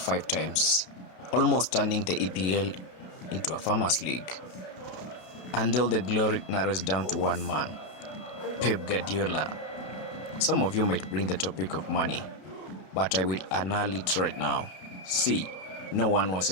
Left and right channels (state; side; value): late; right; 32 ms